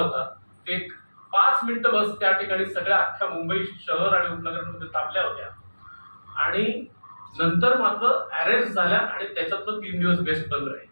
ते 5 मिनिटं बस त्या ठिकाणी सगळ्या अख्ख्या मुंबई शहर आणि उपनगरांमध्ये थांबल्या होत्या आणि नंतर मात्र अरेस्ट झाल्या आणि त्याच्यातनं 3 दिवस बेस्ट बंद राहिले.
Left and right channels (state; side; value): inverted; both; correlation -1.00